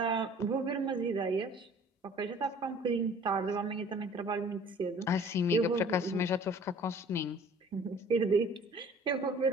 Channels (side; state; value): both; normal; correlation 0.50